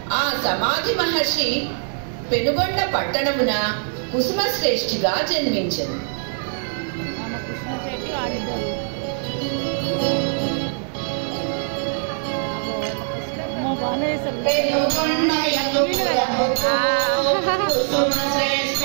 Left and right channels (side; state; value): left; silent; digital silence